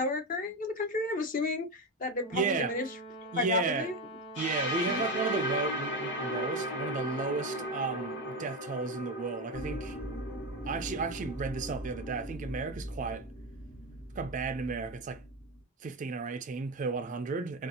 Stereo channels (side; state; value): both; normal; correlation 0.16